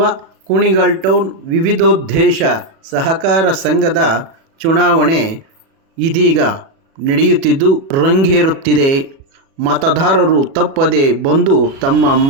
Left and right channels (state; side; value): late; left; 36 ms